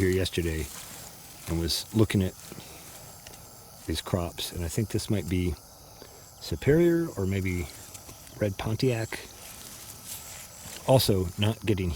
yesterday and was looking at these crops. And I think this might be Superior or maybe Red Pontiac. Also not getting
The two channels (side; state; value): both; identical; correlation 1.00